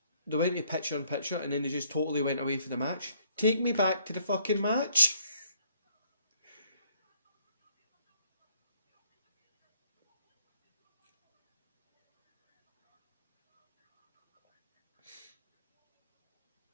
they went to picture in picture and then they just totally went away from the match. Take me back to the fucking match.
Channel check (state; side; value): inverted; both; correlation -0.65